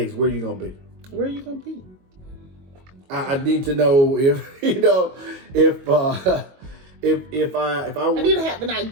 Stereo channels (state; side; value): late; left; 22 ms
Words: where are you gonna be? Where are you gonna be? I need to know if if I need to have an